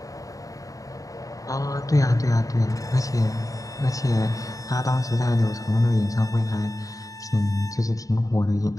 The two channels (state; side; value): late; right; 0.17 ms